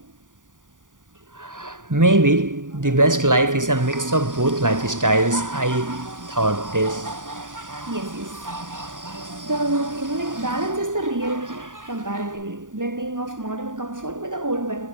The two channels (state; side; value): late; left; 0.88 ms